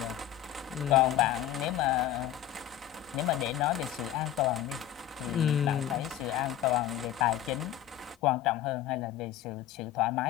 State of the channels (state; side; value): quieter; right; 11.9 dB